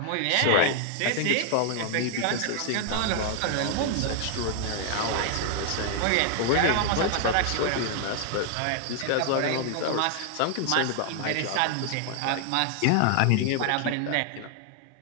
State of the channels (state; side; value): different; both; correlation 0.00